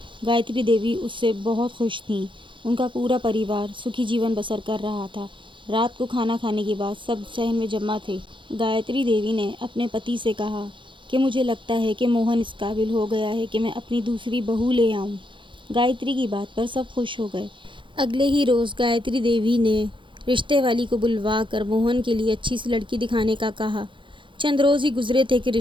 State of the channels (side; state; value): left; late; 0.24 ms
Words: गायत्री देवी उससे बहुत खुश थीं। उनका पूरा परिवार सुखी जीवन बसर कर रहा था। रात को खाना खाने के बाद सब सहन में जमा थे। गायत्री देवी ने अपने पति से कहा कि मुझे लगता है कि मोहन इस काबिल हो गया है कि मैं अपनी दूसरी बहू ले आऊं। गायत्री की बात पर सब खुश हो गए। अगले ही रोज़ गायत्री देवी ने रिश्ते वाली को बुलवा कर मोहन के लिए अच्छी सी लड़की दिखाने का कहा। चंद रोज़ ही गुजरे थे कि